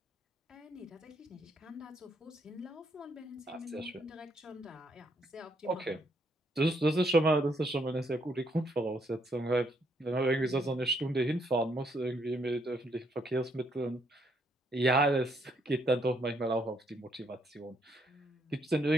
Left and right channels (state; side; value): normal; both; correlation 0.72